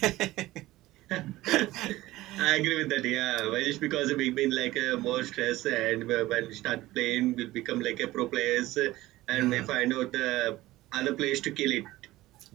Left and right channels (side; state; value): left; quieter; 17.3 dB